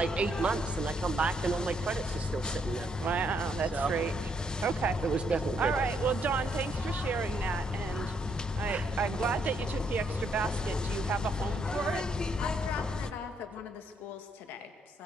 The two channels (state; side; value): normal; both; correlation 0.73